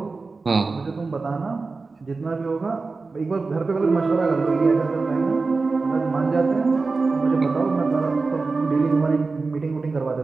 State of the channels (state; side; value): quieter; left; 4.0 dB